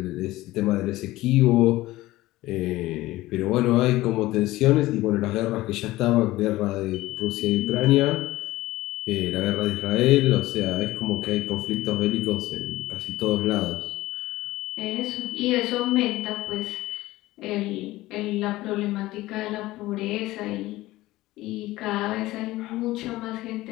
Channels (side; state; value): right; quieter; 17.7 dB